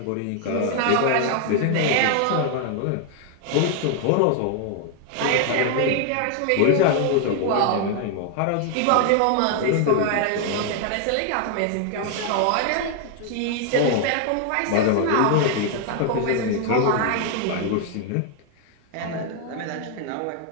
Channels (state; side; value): different; both; correlation 0.00